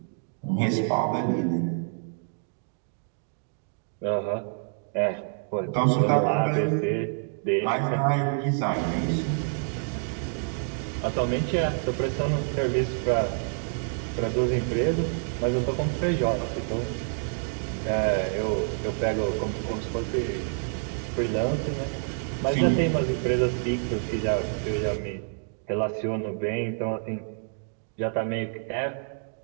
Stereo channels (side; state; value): left; silent; 59 dB below the other